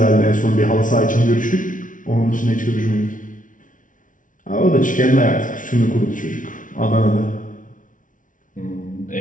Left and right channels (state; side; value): late; right; 0.38 ms